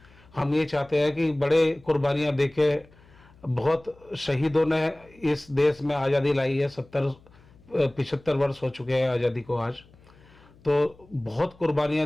हम ये चाहते हैं कि बड़े कुर्बानियां देके बहुत शहीदों ने इस देश में आज़ादी लाई है। 75 वर्ष हो चुके हैं आज़ादी को आज, तो बहुत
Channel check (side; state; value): left; noise; hum, 27 dB below the sound